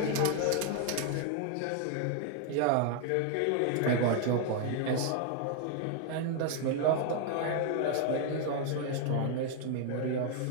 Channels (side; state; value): both; different; correlation 0.00